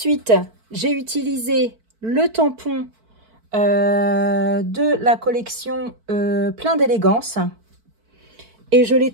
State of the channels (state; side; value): late; left; 4.5 ms